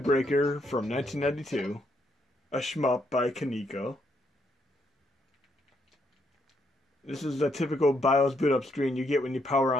Breaker from 1992, a shmup by Kaneko. This is the typical BIOS boot up screen you get when you power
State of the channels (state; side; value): normal; both; correlation 0.75